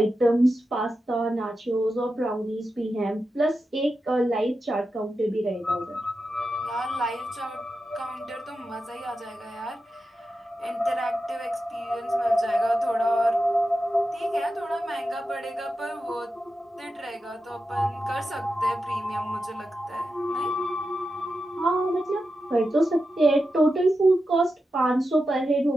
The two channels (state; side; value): normal; both; correlation 0.90